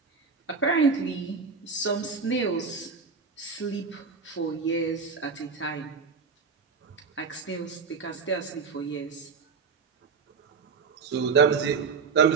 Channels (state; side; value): quieter; left; 5.2 dB